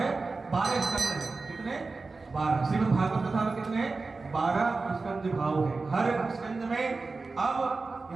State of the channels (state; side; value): quieter; left; 3.9 dB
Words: स्कंद हैं। कितने? 12। श्रीमद् भागवत कथा में कितने? 12 स्कंद भाव है। हर स्कंद में अब